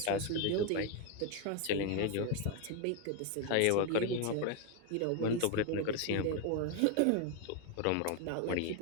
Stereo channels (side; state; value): both; different; correlation 0.01